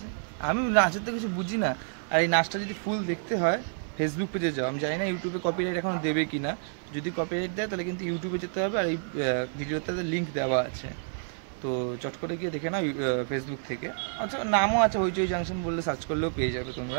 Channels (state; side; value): silent; left; 59 dB below the other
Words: আমি নাচের তো কিছু বুঝি না, আর এই নাচটা যদি ফুল দেখতে হয় ফেসবুক পেজে যাও। আমি জানি না ইউটিউবে কপিরাইট এখনো দেবে কি না। যদি কপিরাইট দেয় তাহলে কিন্তু ইউটিউবে যেতে হবে, আর এই ভিডিওতে লিঙ্ক দেওয়া আছে, তো চট করে গিয়ে দেখে নাও ফেসবুক থেকে। আচ্ছা, নামও আছে হইচই জাংশন বললে সার্চ করলেও পেয়ে যাবে